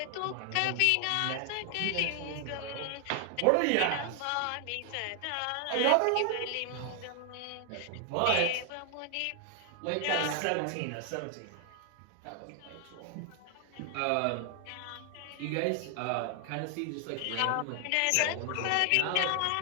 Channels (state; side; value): different; both; correlation 0.00